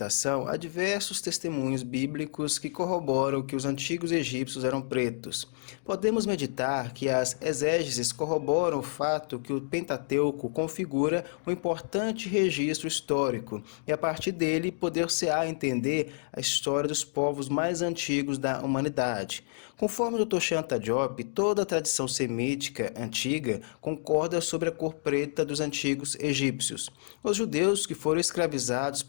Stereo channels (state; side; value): silent; right; digital silence